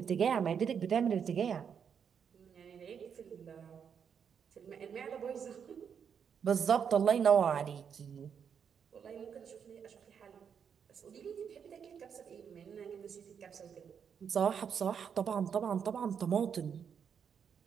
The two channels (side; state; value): left; quieter; 7.3 dB